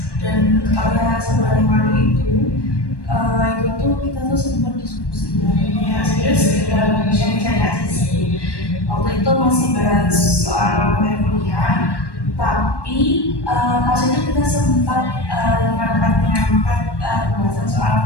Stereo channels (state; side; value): late; right; 1.1 ms